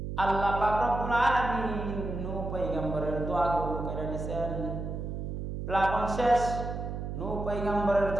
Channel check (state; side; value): noise; right; hum, 5 dB below the sound